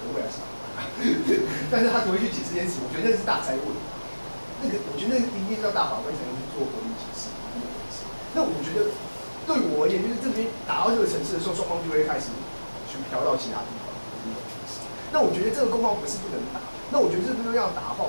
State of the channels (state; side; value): inverted; both; correlation -1.00